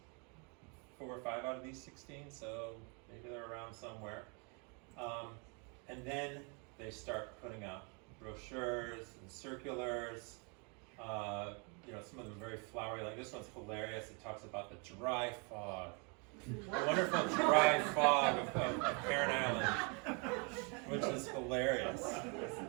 4 or 5 out of these 16, so maybe they're around somewhere. And then they start putting out brochures and circulars. Some of them very flowery. Like this one's hilarious. It talks about the dry fog. The wonderful dry fog of Heron Island, which is hilarious.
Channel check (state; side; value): quieter; left; 34.3 dB